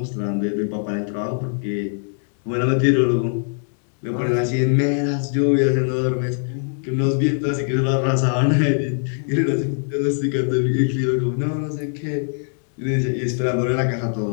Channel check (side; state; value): right; silent; 64 dB below the other